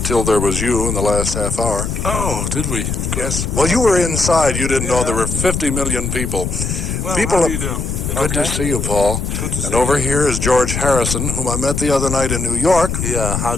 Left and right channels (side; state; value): left; noise; rumble, 3 dB below the sound